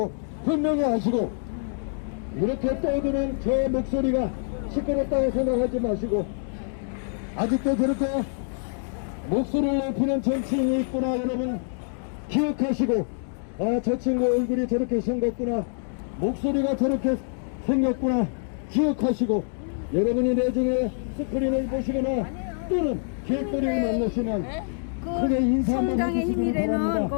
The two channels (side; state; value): right; silent; digital silence